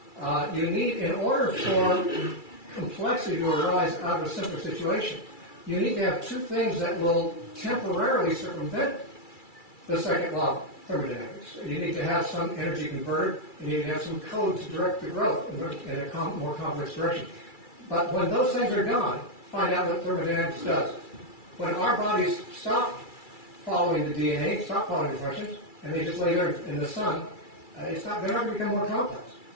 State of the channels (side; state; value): right; late; 2.3 ms